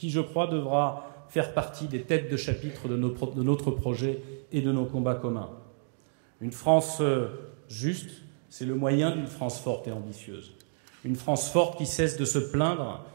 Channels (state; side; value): silent; left; digital silence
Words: je crois, devra faire partie des têtes de chapitre de notre projet et de nos combats communs. Une France juste, c'est le moyen d'une France forte et ambitieuse. Une France forte qui cesse de se plaindre,